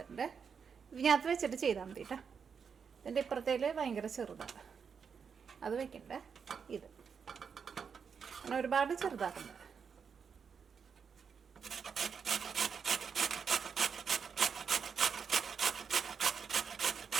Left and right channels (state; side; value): quieter; left; 6.4 dB